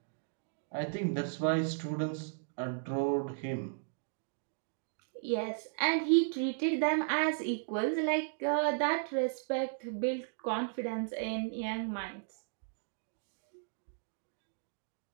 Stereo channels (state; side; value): silent; left; digital silence